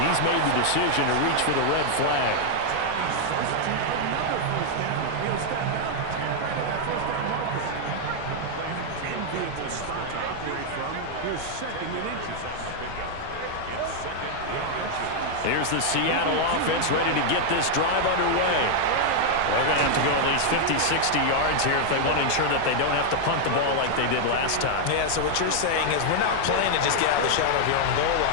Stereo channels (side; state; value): both; different; correlation 0.00